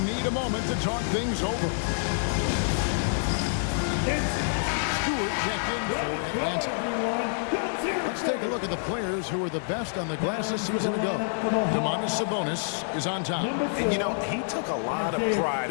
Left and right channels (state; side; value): silent; right; 59 dB below the other